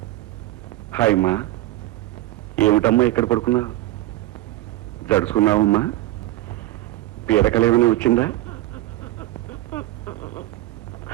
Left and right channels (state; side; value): quieter; left; 16.3 dB